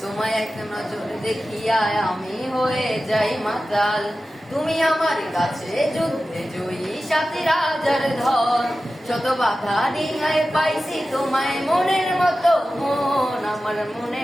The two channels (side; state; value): both; normal; correlation 0.94